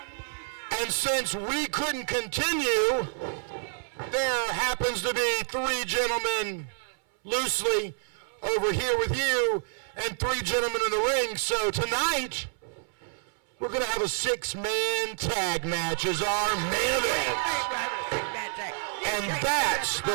And since we couldn't continue, there happens to be 3 gentlemen loosely over here with you and 3 gentlemen in the ring. So tonight, we're going to have a 6-man tag match as our main event. And that's the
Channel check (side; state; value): left; silent; 59 dB below the other